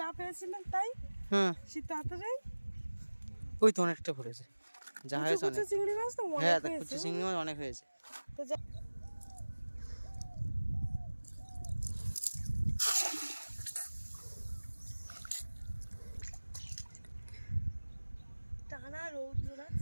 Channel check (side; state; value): both; inverted; correlation -1.00